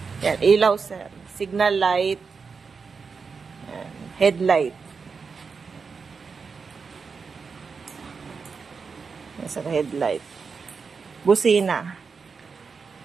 Yan, ilaw sir. Signal light. Yan. Headlight. Yan sir, headlight. Busina.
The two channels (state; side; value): quieter; left; 5.2 dB